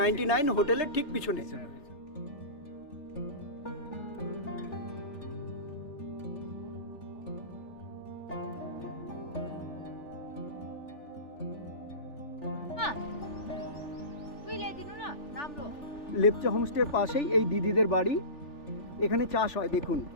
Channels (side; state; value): right; late; 3.4 ms